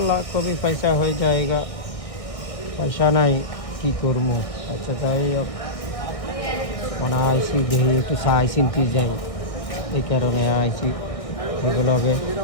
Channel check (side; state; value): right; late; 1.7 ms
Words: कभी पैसा हो जाएगा, पैसा नहीं की करमो। अच्छा जाए अब मना आईसी देही একটু চাই চিন্তি যাই, এই কারণে আইছি। এগুলোকে